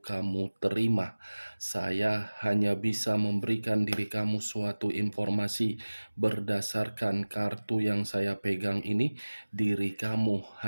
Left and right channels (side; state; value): both; inverted; correlation -1.00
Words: kamu terima. Saya hanya bisa memberikan diri kamu suatu informasi berdasarkan kartu yang saya pegang ini. Diri kamu